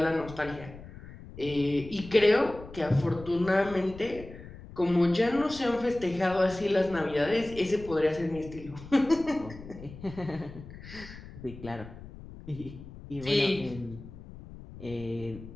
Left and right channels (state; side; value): noise; left; rumble, 15 dB below the sound